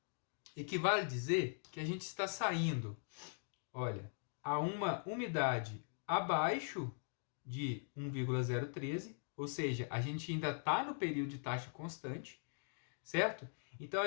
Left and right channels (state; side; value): silent; right; digital silence